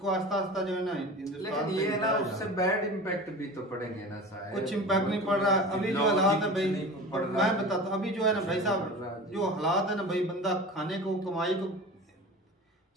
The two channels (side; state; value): both; normal; correlation 0.35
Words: आस्ता आस्ता जो है ना हिंदुस्तान ये है ना उससे बैड इम्पैक्ट भी तो पड़ेंगे ना शायद। कुछ इम्पैक्ट नहीं पड़ रहा अभी जो हालात है भाई, मैं बताता हूँ अभी जो है ना भाई साहब जो हालात है ना भाई, बंदा खाने को कमाई को,